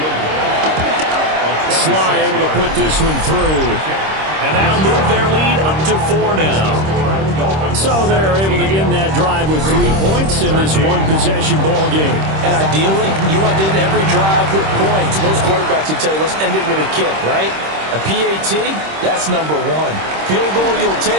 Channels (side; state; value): left; late; 26 ms